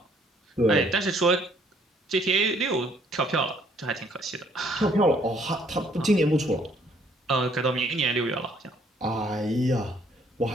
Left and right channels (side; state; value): both; normal; correlation 0.64